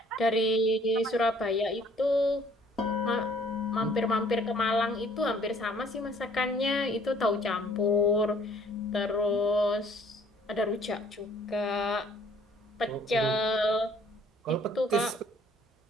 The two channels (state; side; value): normal; both; correlation 0.58